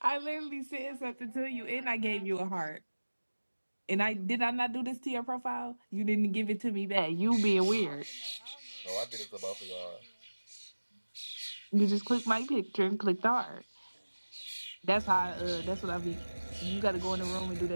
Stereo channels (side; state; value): both; inverted; correlation -1.00